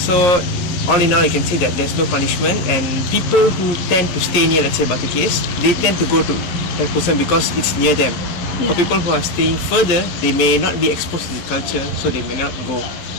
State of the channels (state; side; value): late; right; 11 ms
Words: all in all, you can say that there's no punishment, and people who tend to stay near, let's say, Batu Caves, they tend to go to Thaipusam because it's near them. For people who are staying further, they may not be exposed to the culture, so they may not go.